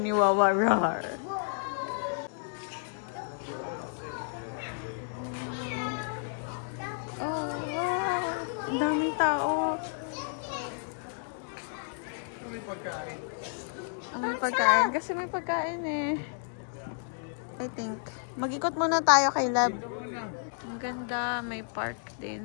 ni Wawa, rar. Ang daming tao. May pagkain. May pagkain. Kasi may pagkain eh. I think. Mag-ikot muna tayo kay Lab. Ang ganda. May park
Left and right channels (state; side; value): silent; right; digital silence